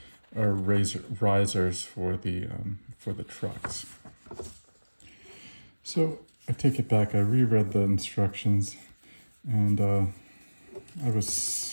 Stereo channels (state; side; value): inverted; both; correlation -1.00